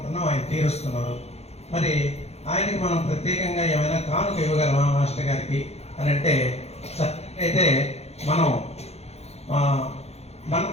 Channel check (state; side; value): late; right; 0.31 ms